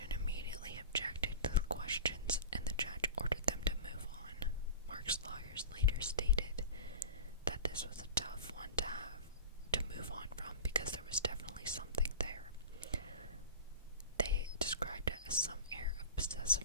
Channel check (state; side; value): inverted; both; correlation -0.33